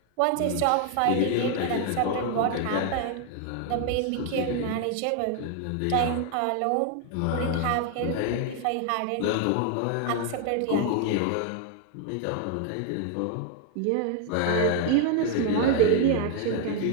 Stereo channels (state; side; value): different; both; correlation 0.00